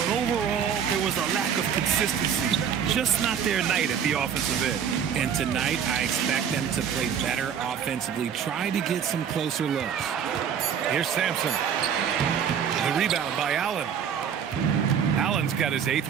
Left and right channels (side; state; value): left; quieter; 7.9 dB